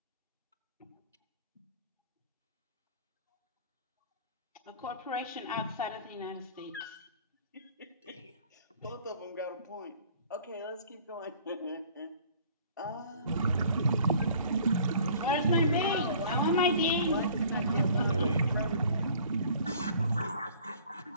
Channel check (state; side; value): inverted; both; correlation -0.52